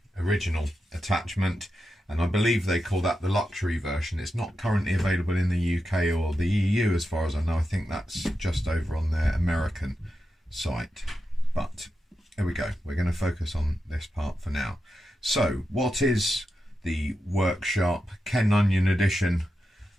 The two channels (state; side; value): normal; both; correlation 0.89